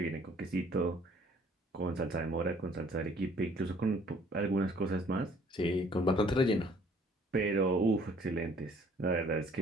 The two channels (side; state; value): both; normal; correlation 0.58